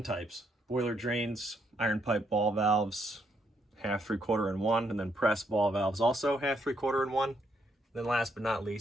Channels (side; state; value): both; normal; correlation 0.75